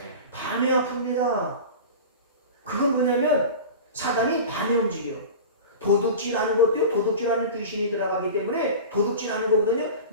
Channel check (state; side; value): inverted; both; correlation -0.33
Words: 밤에 아픕니다. 그건 뭐냐면 사단이 밤에 움직여요. 도둑질하는 것도요, 도둑질하는 귀신이 들어가기 때문에 도둑질하는 거거든요.